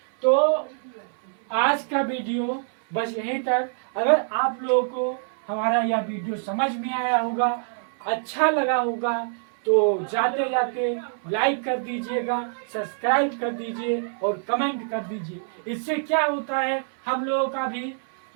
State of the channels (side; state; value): left; silent; 62 dB below the other